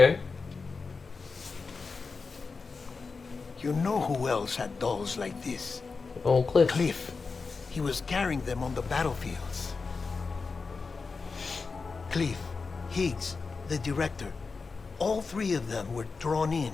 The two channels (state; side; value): quieter; right; 4.5 dB